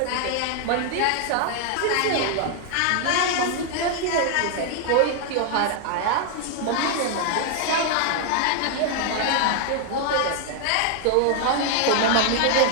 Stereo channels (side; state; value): both; different; correlation 0.00